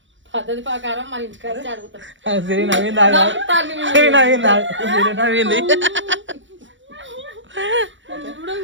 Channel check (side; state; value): left; late; 0.55 ms